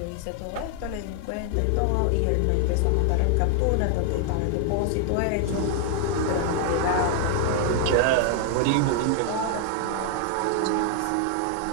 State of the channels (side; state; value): both; different; correlation 0.00